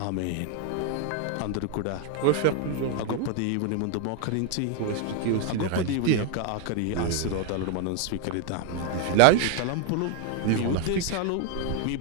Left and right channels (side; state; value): both; different; correlation 0.00